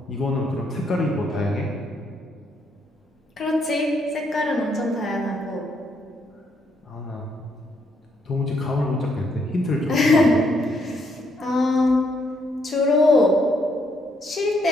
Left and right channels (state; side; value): normal; both; correlation 0.73